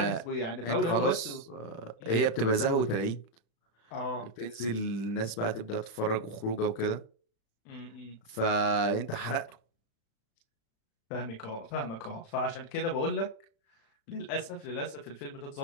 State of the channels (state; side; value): late; right; 36 ms